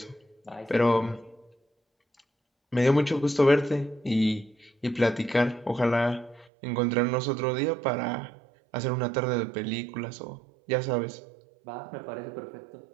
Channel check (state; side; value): drops out; left; at 6.5 s